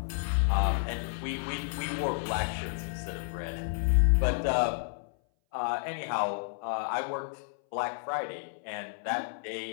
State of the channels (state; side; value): silent; right; 57 dB below the other